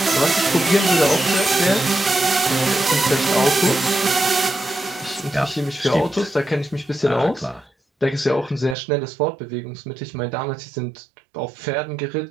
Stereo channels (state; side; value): drops out; left; at 8.8 s